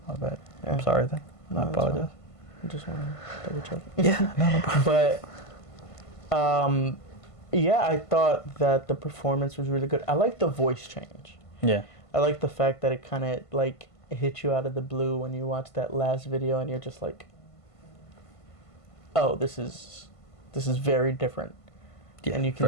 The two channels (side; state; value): right; late; 1.5 ms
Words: My bad. Yeah. I'm sorry then. No, I apologize. I just want to double check. Yeah, no problem. But, yeah, I thought that the performance was really good. I like the voice change. Yeah. I like the fact that it kind of like hit you out of the blue when you watch that last video, and you're just like, "Oh, this is very different." Yeah, and you